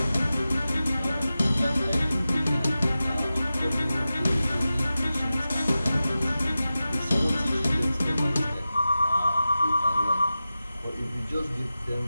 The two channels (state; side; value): inverted; both; correlation -0.94